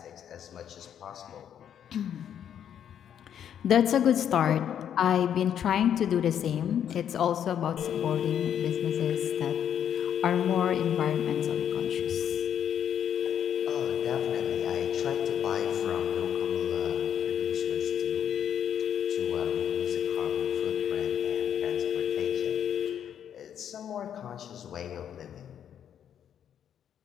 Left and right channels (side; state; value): right; quieter; 9.4 dB